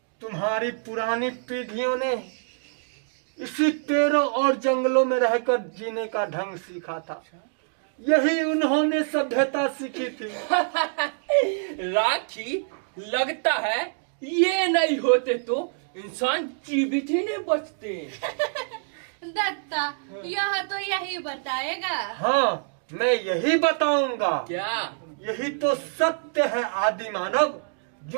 तुम्हारी पुरानी पीढ़ियों ने इसी पेड़ों और जंगलों में रहकर जीने का ढंग सीखा था। यही उन्होंने सभ्यता सीखी थी। राखी, लगता है ये नहीं होते तो इंसान जीवित ही नहीं बचते। दत्ता, यह तो यही बताएगा। हाँ, मैं यही बताऊंगा। क्या? यही तो सत्य है आदि मानव।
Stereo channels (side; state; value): left; silent; digital silence